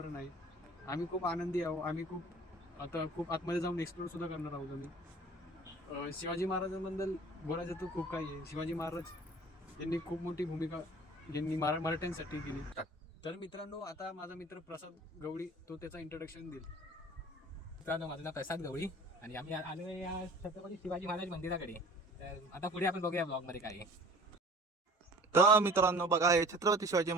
आहे. आम्ही खूप आनंदी आहोत. आम्ही खूप आतमध्ये जाऊन एक्सप्लोर सुद्धा करणार आहोत. आम्ही शिवाजी महाराजांबद्दल बोलायचं तर खूप काही आहे. शिवाजी महाराज यांनी खूप मोठी भूमिका यांनी मराठ्यांसाठी केली. तर मित्रांनो, आता माझा मित्र प्रसाद गवळी तो त्याचा इंट्रोडक्शन देईल. मित्रांनो, माझं नाव प्रसाद गवळी आणि आम्ही आलो या छत्रपती शिवाजी महाराज मंदिराकडे. तर आता पुढे आपण बघूया ब्लॉगमध्ये काय आहे. तर मित्रांनो बघा, हे छत्रपती शिवाजी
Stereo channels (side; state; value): both; normal; correlation 0.47